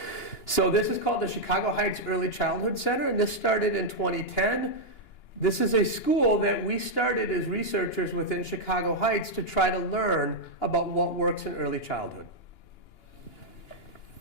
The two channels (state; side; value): late; right; 2.9 ms